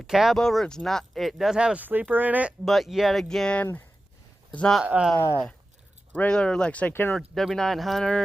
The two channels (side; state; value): both; normal; correlation 0.94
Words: cab over. It does have a sleeper in it, but yet again, it's not regular, like say Kenworth